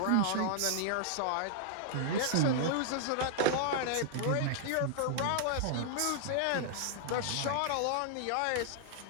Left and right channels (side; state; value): both; different; correlation -0.01